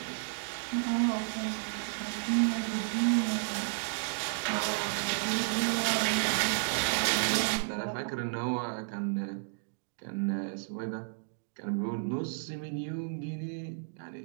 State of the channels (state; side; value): silent; left; digital silence